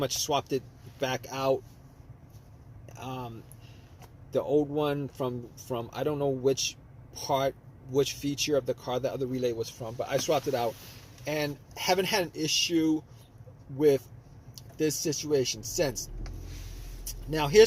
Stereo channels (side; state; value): both; identical; correlation 1.00